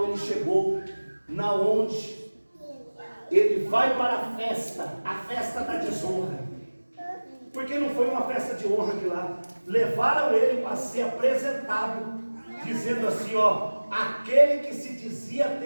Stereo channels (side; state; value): both; inverted; correlation -1.00